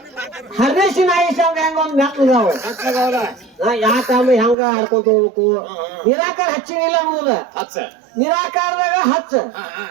ಹರ್ನೇಶಿನ ಆಯುಷ ಹೆಂಗ ಒಂದ್ ಮೆಟ್ಲದಾವ ಯಾಕಮ್ಮ ಹೆಂಗ ಹಾಡ್ಕೊಂತ ಹೋಗ್ಬೇಕು. ನಿರಾಕಾರ ಹಚ್ಚಿನಿಲ್ಲ ಅನ್ನೋದ ನಿರಾಕಾರದಾಗ ಹಚ್ಚ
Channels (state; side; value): drops out; left; at 4.5 s